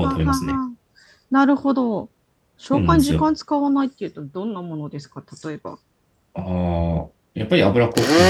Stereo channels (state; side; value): identical; both; correlation 1.00